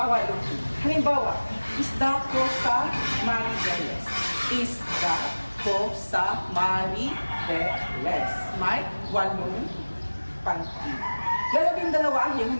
Halimbawa, isda ko sa Maribeles. Isda ko sa Maribeles. May 8 pantig. 12 ang iyong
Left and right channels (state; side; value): inverted; both; correlation -1.00